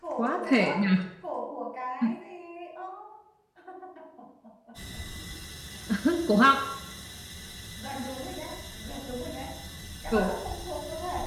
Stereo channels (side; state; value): both; identical; correlation 1.00